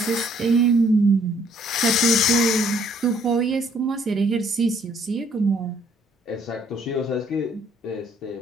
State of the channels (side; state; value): both; normal; correlation 0.64